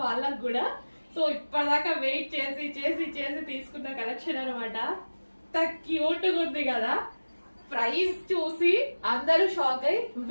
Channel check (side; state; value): both; inverted; correlation -1.00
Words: వాళ్ళకు కూడా. సో ఇప్పటిదాకా వెయిట్ చేసి చేసి చేసి తీసుకున్న కలెక్షన్ అనమాట. క్యూట్ గా ఉంది కదా. ప్రైస్ చూసి అందరూ షాక్ అయ్యి